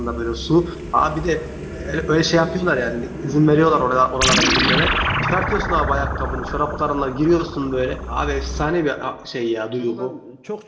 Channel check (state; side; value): identical; both; correlation 1.00